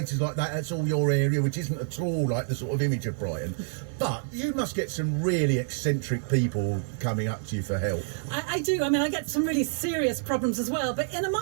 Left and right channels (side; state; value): left; silent; 60 dB below the other